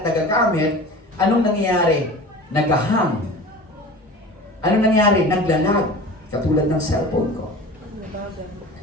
nagagamit, anong nangyayari? Nagahang. Anong nangyayari? Naglalag. Katulad ng cellphone ko.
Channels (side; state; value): both; normal; correlation 0.37